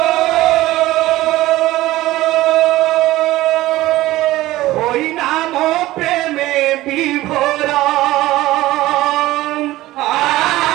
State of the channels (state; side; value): quieter; left; 16.9 dB